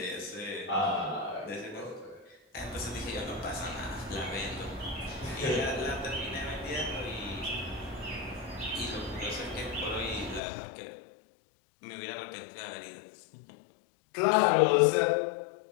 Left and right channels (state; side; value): drops out; right; at 10.4 s